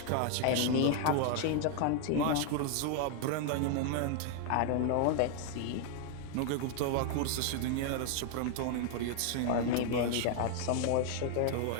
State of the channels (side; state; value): both; different; correlation 0.00